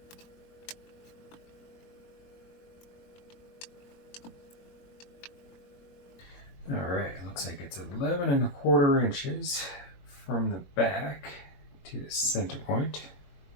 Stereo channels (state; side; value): late; right; 21 ms